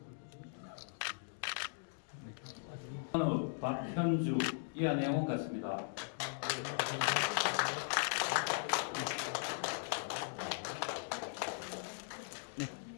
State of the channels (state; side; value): silent; right; digital silence